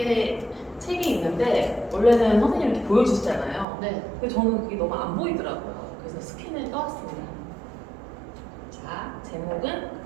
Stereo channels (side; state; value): left; drops out; at 3.7 s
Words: 책이 있는데 원래는 선생님이 이렇게 보여주시잖아요. 네. 근데 저는 그게 너무 안 보이더라고요. 그래서 스캔을 떠왔습니다. 자, 제목은